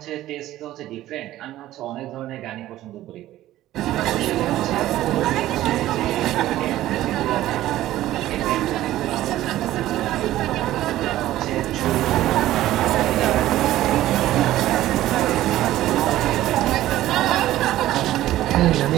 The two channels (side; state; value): left; quieter; 14.6 dB